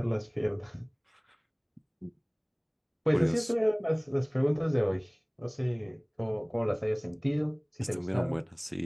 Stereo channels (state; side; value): identical; both; correlation 1.00